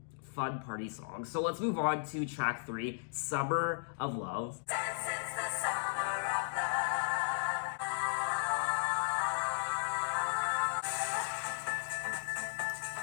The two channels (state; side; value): silent; right; digital silence